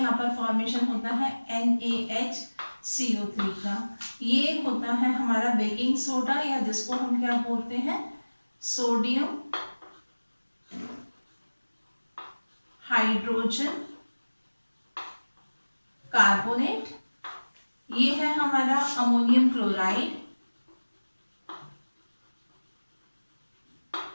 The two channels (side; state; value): both; inverted; correlation -1.00